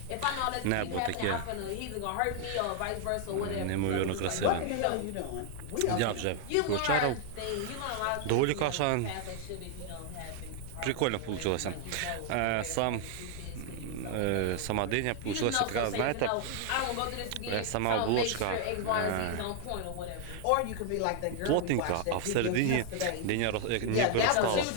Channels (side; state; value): both; different; correlation 0.00